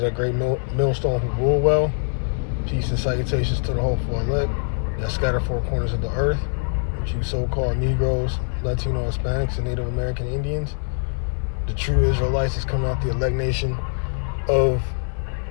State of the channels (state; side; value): silent; right; digital silence